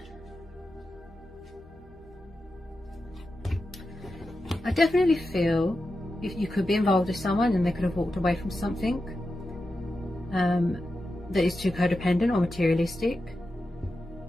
I definitely feel if you could be involved with someone and they could have walked away from something that is too codependent or materialistic,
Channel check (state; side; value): normal; both; correlation 0.90